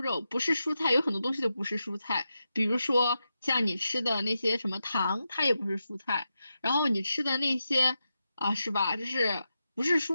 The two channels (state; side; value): inverted; both; correlation -0.89